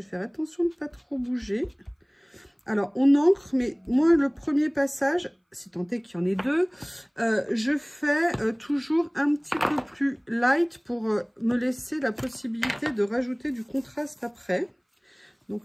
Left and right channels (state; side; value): identical; both; correlation 1.00